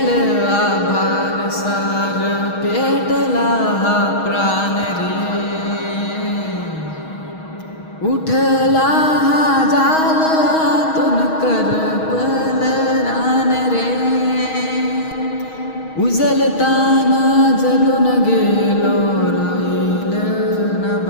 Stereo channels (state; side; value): late; right; 6.3 ms